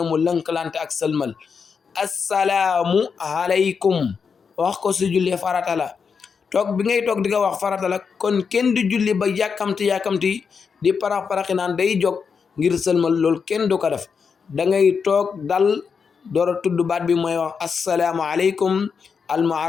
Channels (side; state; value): right; quieter; 5.9 dB